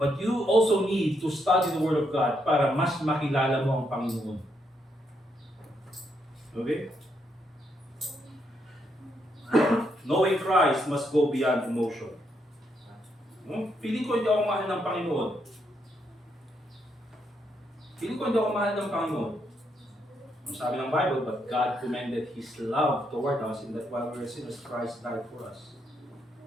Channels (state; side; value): normal; both; correlation 0.77